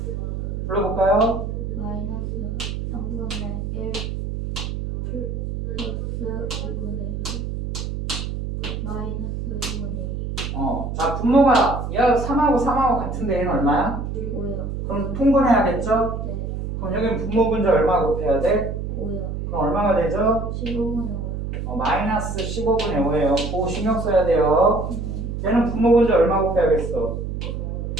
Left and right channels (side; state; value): right; noise; hum, 4 dB below the sound